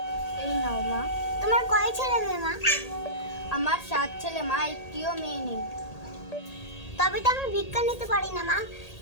এই নাও মা। তোমার কয় ছেলে মেয়ে মা? আমার 7 ছেলে মা, একটিও মেয়ে নেই। তবে তো আমি ভিক্ষা নিতে পারি না মা।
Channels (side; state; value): right; late; 1.8 ms